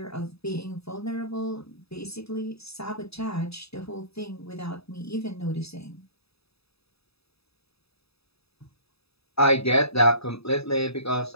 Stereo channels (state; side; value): late; right; 0.78 ms